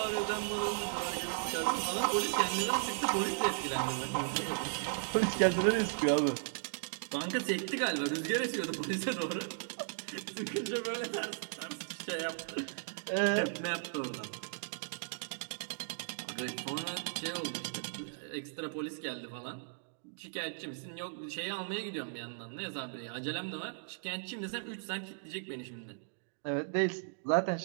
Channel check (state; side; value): silent; left; digital silence